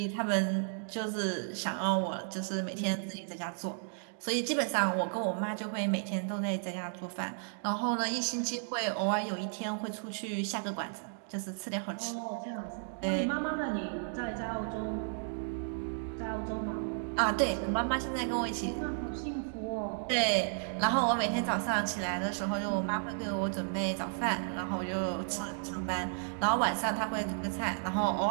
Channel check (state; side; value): silent; left; digital silence